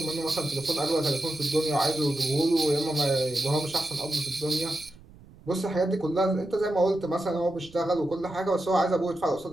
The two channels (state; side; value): noise; right; rumble, 23 dB below the sound